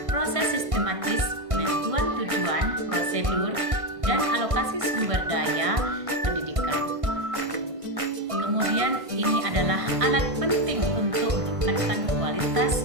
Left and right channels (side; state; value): left; late; 1.5 ms